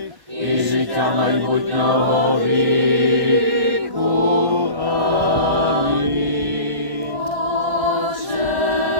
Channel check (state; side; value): late; left; 1.6 ms